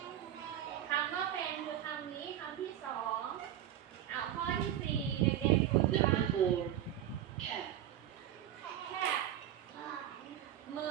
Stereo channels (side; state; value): left; quieter; 11.5 dB